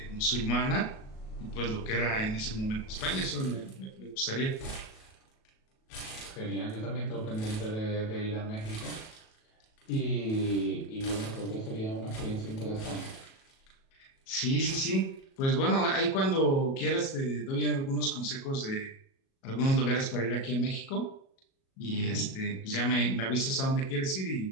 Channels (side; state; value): right; late; 37 ms